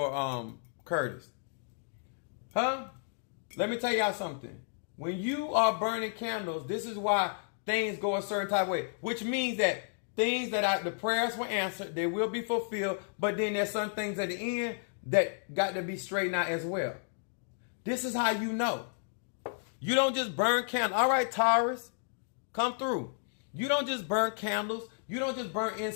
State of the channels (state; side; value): silent; right; digital silence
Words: Curtis. Huh? Let me tell y'all something. When you are burning candles, this is why things go a certain type of way. Which means that things the prayers were answered, they will be fulfilled. But then there's some things at the end that got to be straightened out as well. This is how you know. You don't just burn candles. All right, Taurus, come through. You don't just burn candles. You don't just burn